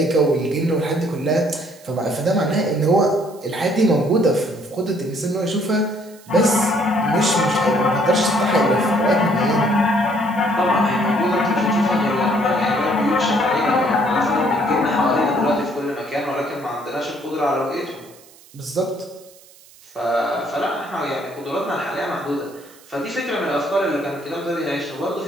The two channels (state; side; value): noise; right; hiss, 24 dB below the sound